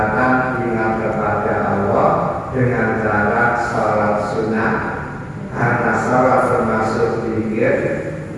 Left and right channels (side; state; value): both; identical; correlation 1.00